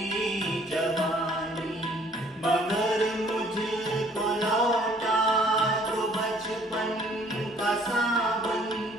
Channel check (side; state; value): both; normal; correlation 0.59